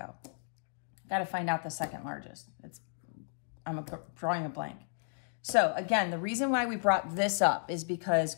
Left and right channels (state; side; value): silent; right; digital silence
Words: Got to find out the second largest. I'm drawing a blank. So again, the reason why we brought this up is because